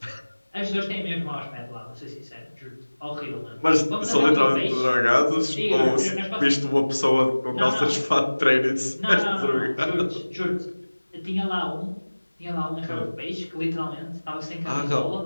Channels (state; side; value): inverted; both; correlation -1.00